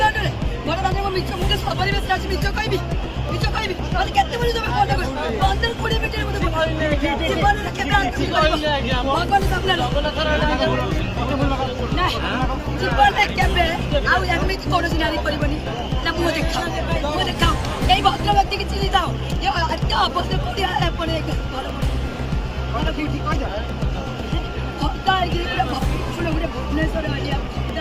ଦାଣ୍ଡରେ ମୋ ମିଛ ମୁଁ ସପରିବେଶ ଅଛି ମିଛ କହିବି ମତେ କେତେବେଳେ ତମେ ମନେ କର 15-20 ମିନିଟ୍ ମତେ ଜୀବନରେ କେବେ ଭଗବାନ ସାମ୍ନାରେ ଜୀବନରେ କେବେ ଆଉ ଏମିତି କୌଣସି ନାରୀ କରିବନି ନା ମୁଁ ଦେଖାଅ ଏଇ ଭଦ୍ର ବ୍ୟକ୍ତିକି ଚିନି ଥାଅ ଏତେ ଅଭଦ୍ର ଭୁବନେଶ୍ୱର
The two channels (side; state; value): both; identical; correlation 1.00